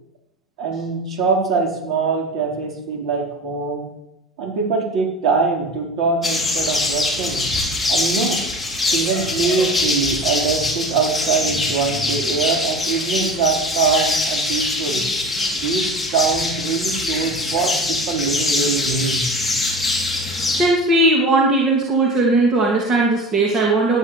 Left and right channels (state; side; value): normal; both; correlation 0.34